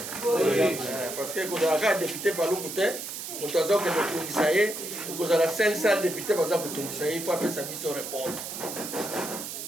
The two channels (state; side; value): noise; right; hiss, 7 dB below the sound